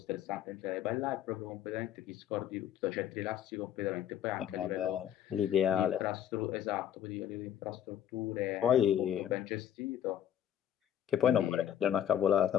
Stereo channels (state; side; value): quieter; right; 10.4 dB